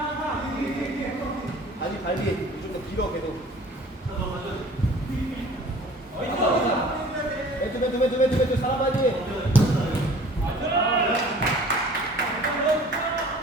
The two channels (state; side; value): normal; both; correlation 0.48